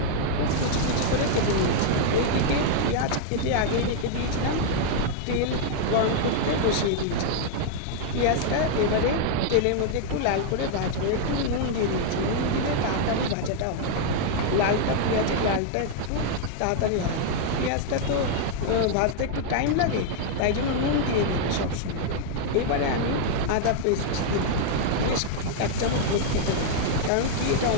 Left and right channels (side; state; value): both; different; correlation -0.01